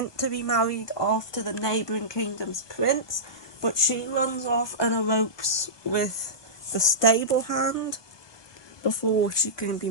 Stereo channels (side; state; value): right; late; 1.2 ms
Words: to be married off to the neighbouring kingdom's prince, but she runs off and elopes with the stable hand before she can be